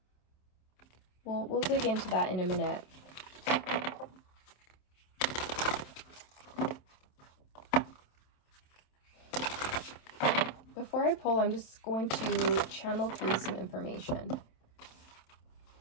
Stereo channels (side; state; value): right; late; 27 ms